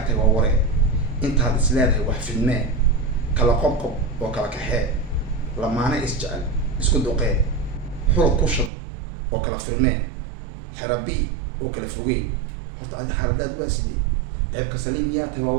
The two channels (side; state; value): left; drops out; at 8.7 s